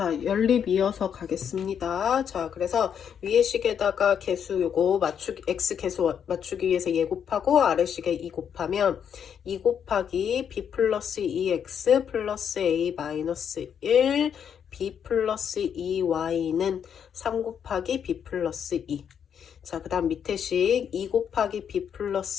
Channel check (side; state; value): right; quieter; 8.0 dB